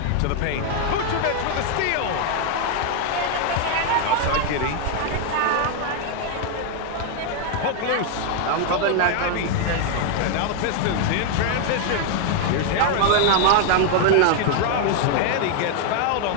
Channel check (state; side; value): different; both; correlation 0.00